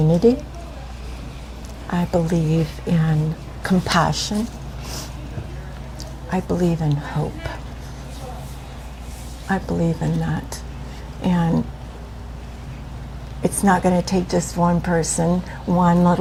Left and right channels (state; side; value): identical; both; correlation 1.00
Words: I believe in compassion. I believe in hope. I believe in that. And it's not going to take just one person, one